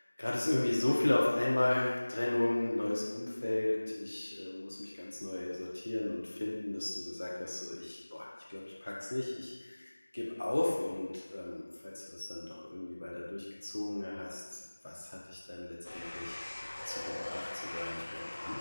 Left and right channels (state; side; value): inverted; both; correlation -1.00